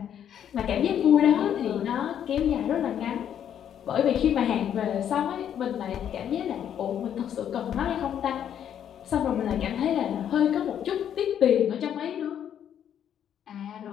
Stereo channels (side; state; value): right; quieter; 9.5 dB